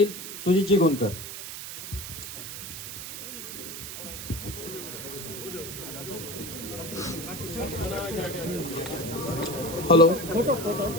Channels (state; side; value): noise; right; hiss, 8 dB below the sound